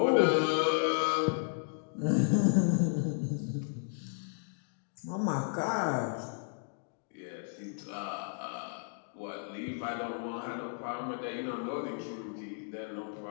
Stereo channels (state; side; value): silent; right; 55 dB below the other